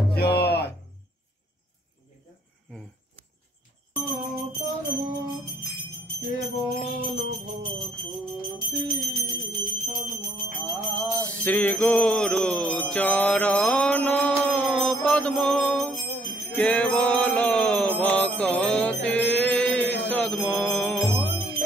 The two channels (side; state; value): both; normal; correlation 0.66